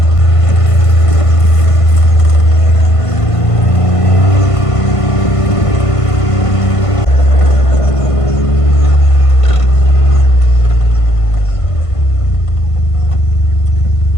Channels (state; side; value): late; right; 1.5 ms